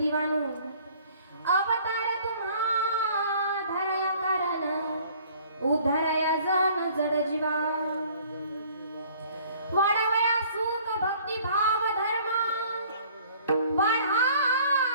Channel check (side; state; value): both; inverted; correlation -0.55